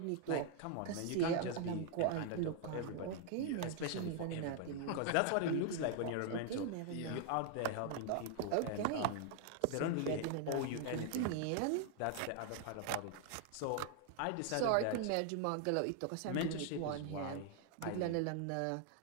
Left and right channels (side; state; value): both; different; correlation 0.00